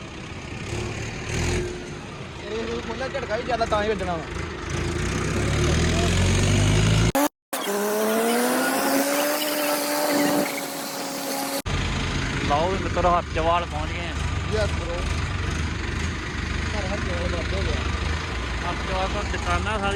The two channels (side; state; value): both; identical; correlation 1.00